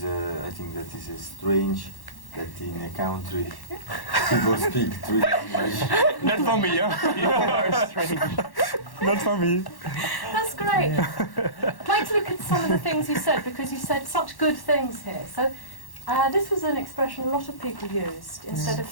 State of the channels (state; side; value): late; right; 1.1 ms